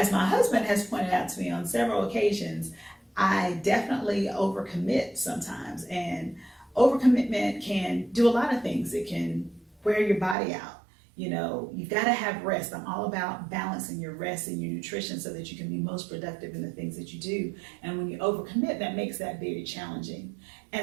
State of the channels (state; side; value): drops out; left; at 10.4 s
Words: my husband has pointed out to me on several occasions, I definitely overcommit sometimes. And overcommitment can do a lot of things. It can wear your body out. You've got to have rest. I'm all about balancing your rest and your nutrition so that you can be most productive in the things that you do. And when you overcommit, that makes that very challenging.